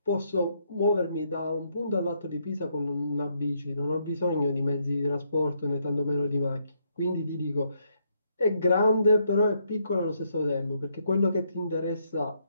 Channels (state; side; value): inverted; both; correlation -0.75